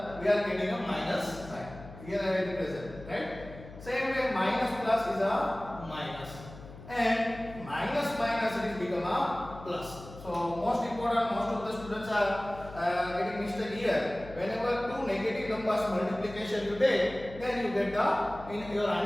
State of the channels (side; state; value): left; noise; hum, 16 dB below the sound